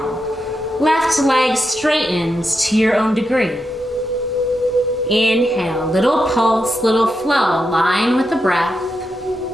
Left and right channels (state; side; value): normal; both; correlation 0.85